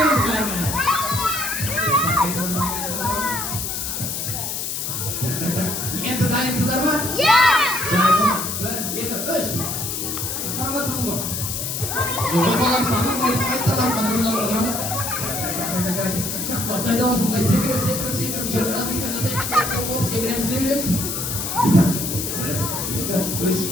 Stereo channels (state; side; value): noise; left; hiss, 3 dB below the sound